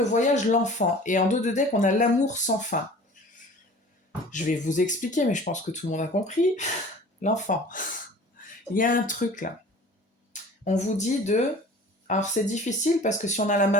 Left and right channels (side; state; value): both; normal; correlation 0.44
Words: voyage, l'enfant. Et en dos de deck, on a l'amour sans fin. Je vais vous expliquer, mais je pense que tout le monde a compris. L'enfant. Il y a un truc là. On vous dit de... Alors c'est difficile parce que si on a